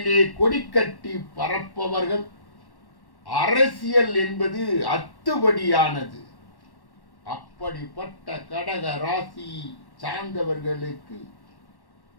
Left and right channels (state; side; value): late; right; 1.1 ms